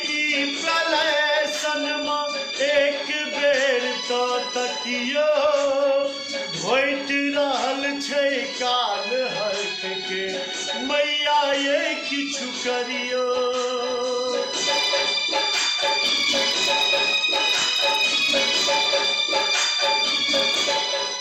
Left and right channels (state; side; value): identical; both; correlation 1.00